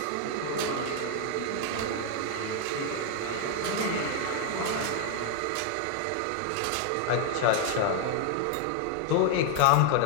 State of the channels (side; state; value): both; different; correlation 0.00